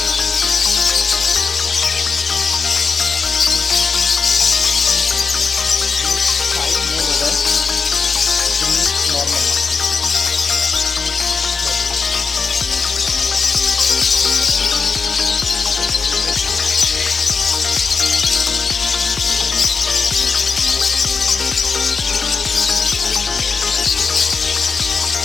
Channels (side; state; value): right; quieter; 4.9 dB